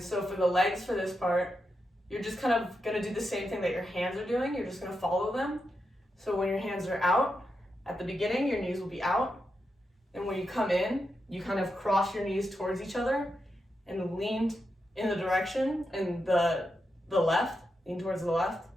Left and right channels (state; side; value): normal; both; correlation 0.86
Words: so for the legs for this part, you're just kind of gonna do the same thing that your hands are doing. You're just gonna follow them. So when your hands are out, at the beginning, your knees will be out. And when you come in, you kind of cross your knees towards each other and lean in the direction and the left, lean towards the left.